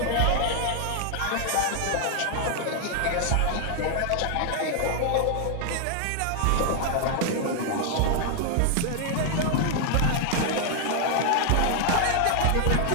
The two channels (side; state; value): both; different; correlation 0.00